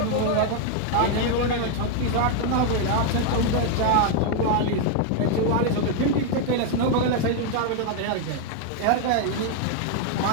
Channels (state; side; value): different; both; correlation 0.00